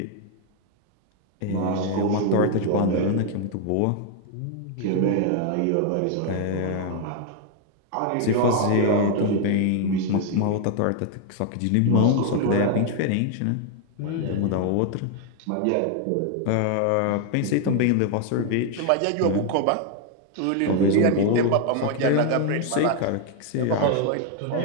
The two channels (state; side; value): different; both; correlation 0.00